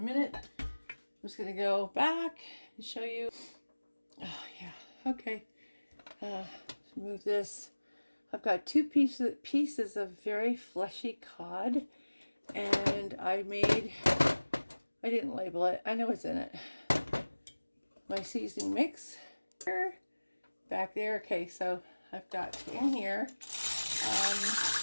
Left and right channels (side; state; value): both; inverted; correlation -1.00